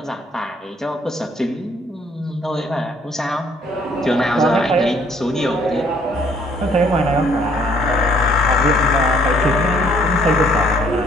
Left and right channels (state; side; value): normal; both; correlation 0.62